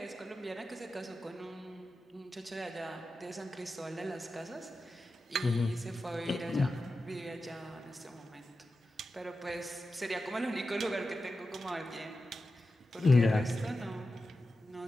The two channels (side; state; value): both; normal; correlation 0.92